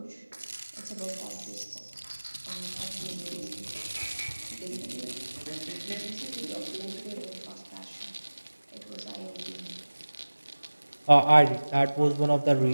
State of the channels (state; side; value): inverted; both; correlation -1.00